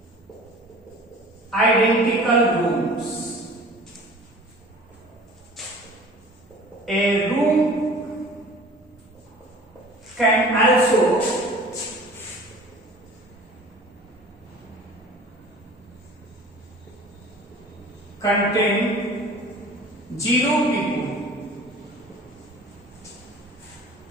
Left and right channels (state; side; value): normal; both; correlation 0.44